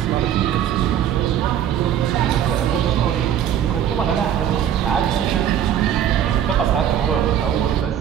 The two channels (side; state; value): left; quieter; 10.0 dB